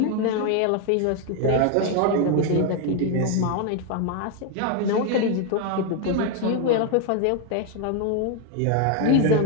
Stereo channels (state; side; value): different; both; correlation 0.01